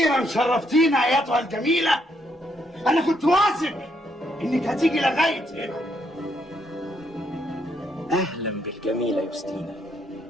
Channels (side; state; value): both; normal; correlation 0.74